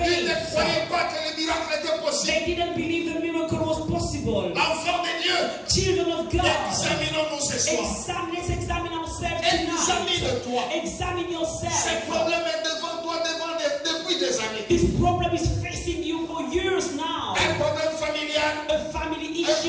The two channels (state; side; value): identical; both; correlation 1.00